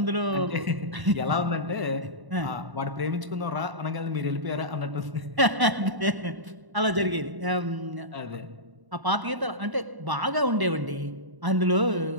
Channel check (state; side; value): late; left; 1.0 ms